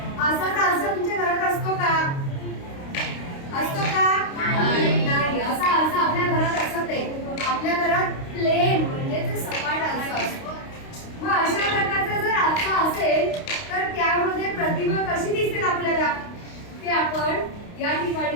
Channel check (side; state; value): right; late; 29 ms